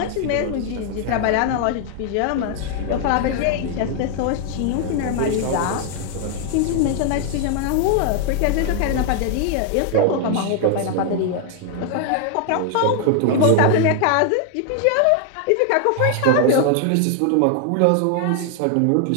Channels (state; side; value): different; both; correlation 0.00